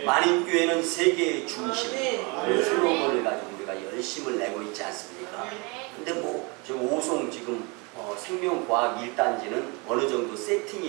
만인교회는 세계의 중심, 그런 슬로건을 가지고 우리가 열심을 내고 있지 않습니까? 근데 뭐 지금 오송 지금 생명과학 1단지는 어느 정도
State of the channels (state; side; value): quieter; left; 29.7 dB